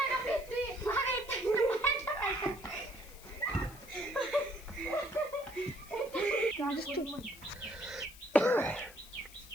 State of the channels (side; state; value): left; noise; hiss, 19 dB below the sound